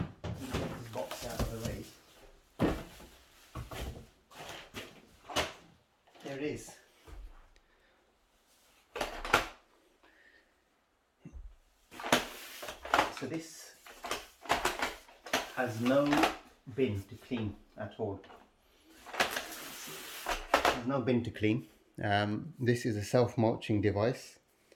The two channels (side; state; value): both; identical; correlation 1.00